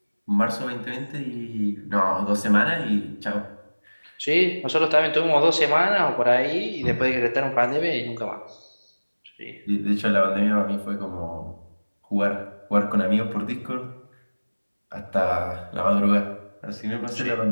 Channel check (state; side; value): inverted; both; correlation -1.00